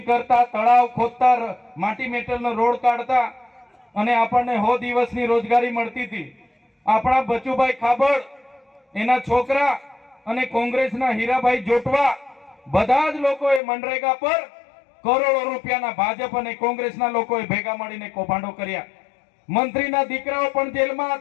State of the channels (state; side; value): drops out; right; at 13.6 s